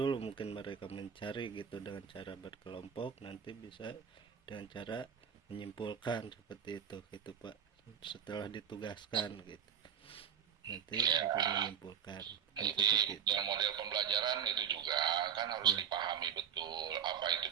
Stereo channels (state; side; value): quieter; left; 8.1 dB